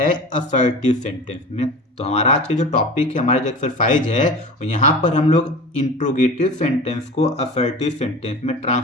असर्टिव सेंटेंस में। तो हमारा आज के जो टॉपिक है, हमारा जो एक्सरसाइज है, यहाँ पर हम लोग इंट्रोगेटिव सेंटेंस को असर्टिव सेंटेंस में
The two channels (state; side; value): normal; both; correlation 0.35